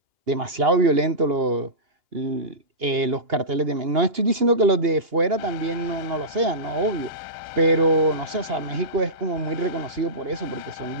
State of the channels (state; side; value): late; left; 2.8 ms